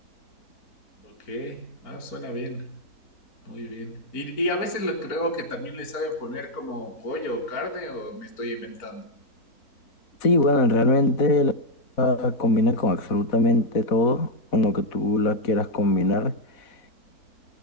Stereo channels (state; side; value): late; right; 4.4 ms